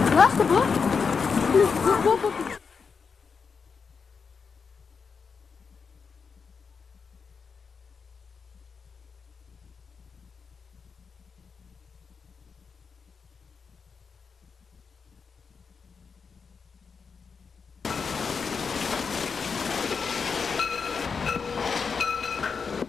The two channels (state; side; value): quieter; right; 5.5 dB